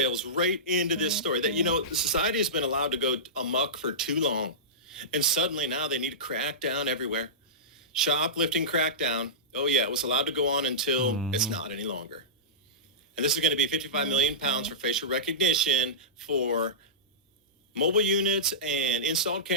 right into this story that, you know, society has been allowed to go amok for too long. And suddenly now they need to crack down everywhere. Shoplifting crackdown. Oh, yeah, it was allowed to go on until it's not any longer. And this is going to be 55 million pounds for facial recognition for mobile units and installed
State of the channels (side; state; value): both; normal; correlation -0.18